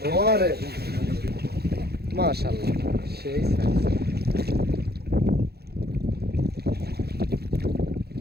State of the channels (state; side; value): late; left; 0.46 ms